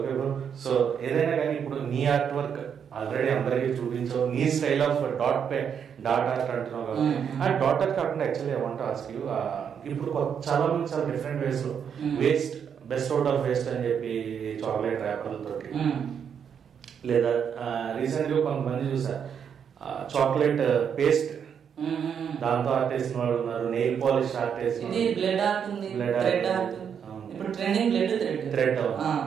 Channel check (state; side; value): quieter; left; 7.6 dB